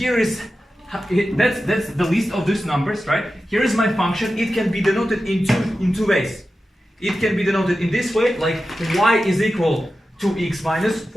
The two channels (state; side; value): normal; both; correlation 0.93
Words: is that's the list of these numbers, right? Here is my function. It can be denoted in two ways. It can be denoted in this way, like y is equal to x minus